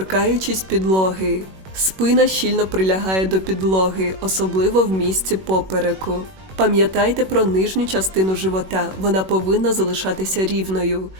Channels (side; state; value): left; late; 21 ms